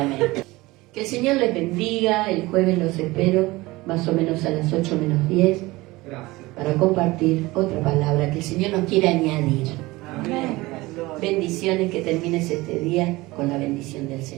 Que el Señor les bendiga. El jueves los espero más o menos a las 8 menos 10 para compartir otra palabra que el Señor nos quiere añadir. Amén. Bendiciones, que termines este día con la bendición del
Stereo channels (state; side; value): quieter; left; 20.6 dB